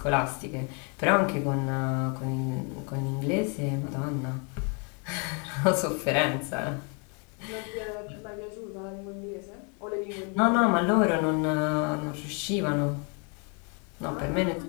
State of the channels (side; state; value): right; quieter; 34.6 dB